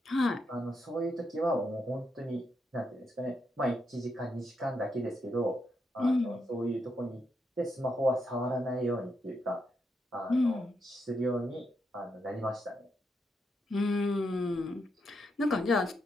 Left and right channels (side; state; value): both; normal; correlation 0.81